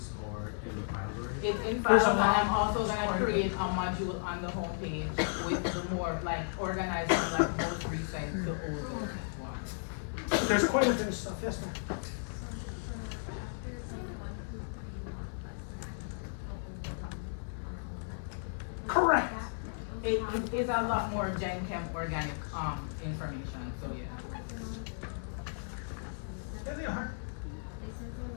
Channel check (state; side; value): silent; right; digital silence